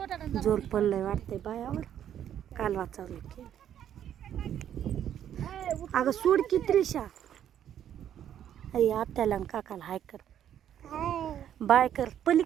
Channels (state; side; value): quieter; left; 10.2 dB